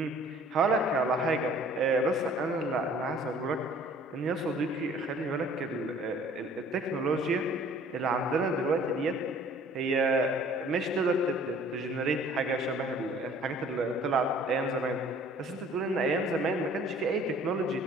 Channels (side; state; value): both; normal; correlation 0.53